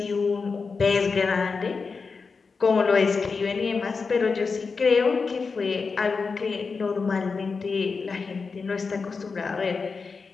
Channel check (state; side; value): quieter; right; 4.8 dB